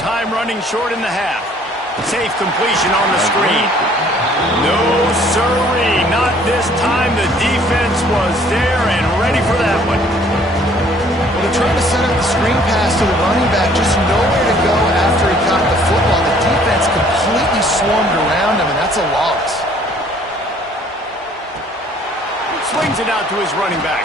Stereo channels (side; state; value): both; normal; correlation 0.58